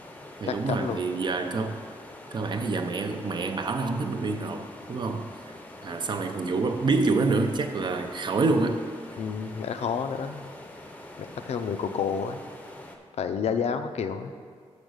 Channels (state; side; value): normal; both; correlation 0.61